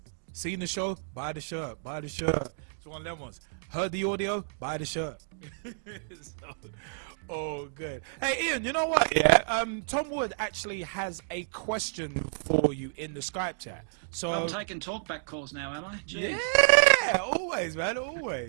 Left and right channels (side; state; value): left; silent; digital silence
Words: seen the show, buy the shirt. It's one of them ones. Heard the audio, buy the shirt. So, good. Hey, Ian, you know what? Yeah, Tom Wood actually has a question for you in the Skype chat. So I'm taking talkback calls now, am I? Jeez. Yeah, always, man,